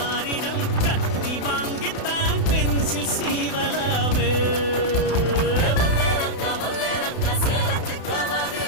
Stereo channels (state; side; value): late; right; 32 ms